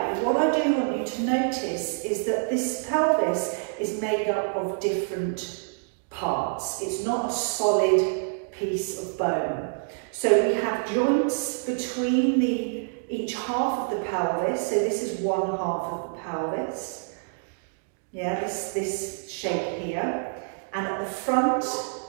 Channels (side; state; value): left; silent; digital silence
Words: what I do want you to notice is that this pelvis is made up of different parts. It's not a solid piece of bone. So we have joints between each half of the pelvis. So this is one half of the pelvis. Yeah, this shape here. And at the front,